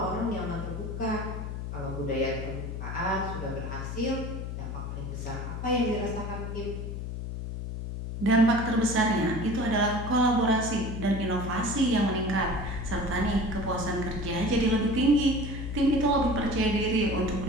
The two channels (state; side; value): noise; left; hum, 5 dB below the sound